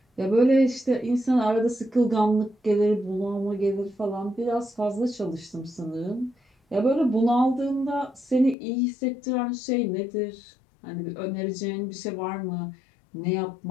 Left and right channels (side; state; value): right; drops out; at 8.6 s